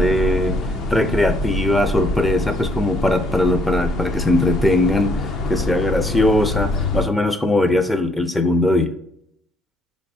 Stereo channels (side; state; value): both; normal; correlation 0.68